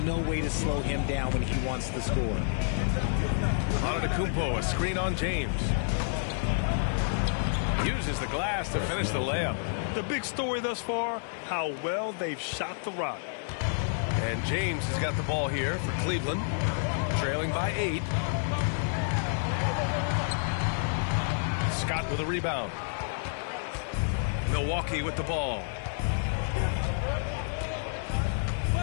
no way to slow him down when he wants to score. Antetokounmpo, a screen on James. Uses the glass to finish the layup. The big story thus far, how well they've shot the rock. And James has got the ball here for Cleveland, trailing by 8. Scott with a rebound. Milwaukee with the ball.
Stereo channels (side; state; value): right; silent; 58 dB below the other